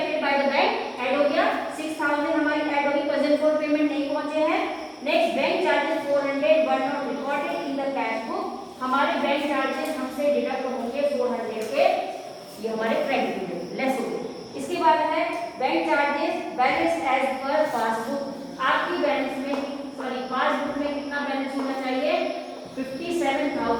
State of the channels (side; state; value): both; identical; correlation 1.00